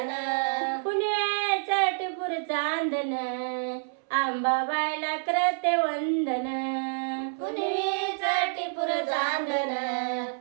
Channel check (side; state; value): left; silent; 59 dB below the other